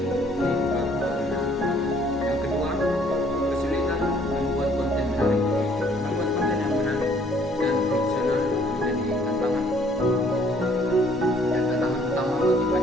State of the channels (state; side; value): normal; both; correlation 0.61